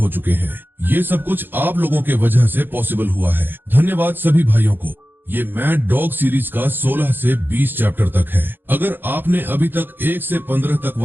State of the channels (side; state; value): left; late; 0.097 ms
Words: चुके हैं। ये सब कुछ आप लोगों के वजह से पॉसिबल हुआ है। धन्यवाद सभी भाइयों को। ये मैड डॉग सीरीज का 16 से 20 चैप्टर तक है। अगर आपने अभी तक 1 से 15 तक